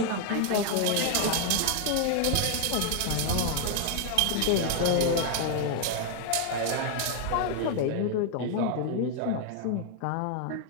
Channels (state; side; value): different; both; correlation 0.00